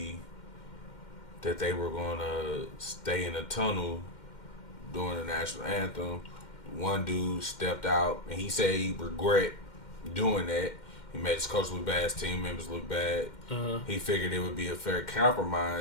that they were going to stay in the tunnel during the national anthem. One dude stepped out and he said he regret doing that. He made his coach look bad, his team members look bad. Uh-huh. He figured it would be a fair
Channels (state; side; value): late; right; 2.1 ms